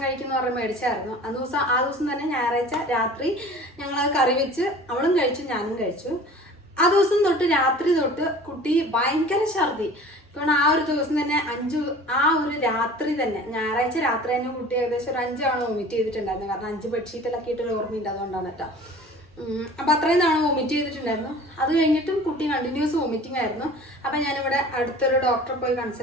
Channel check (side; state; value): both; normal; correlation 0.43